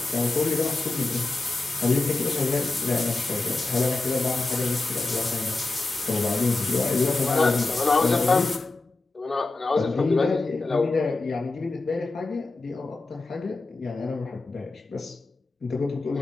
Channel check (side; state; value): right; quieter; 3.4 dB